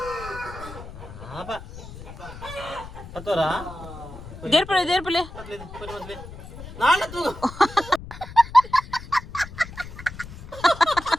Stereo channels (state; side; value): noise; left; rumble, 14 dB below the sound